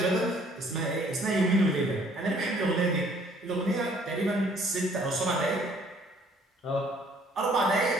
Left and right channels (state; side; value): normal; both; correlation 0.60